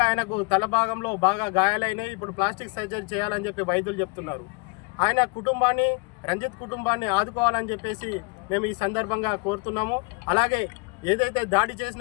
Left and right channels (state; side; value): quieter; right; 29.3 dB